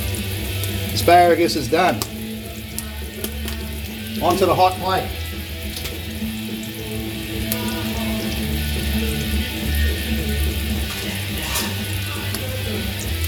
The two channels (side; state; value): both; identical; correlation 1.00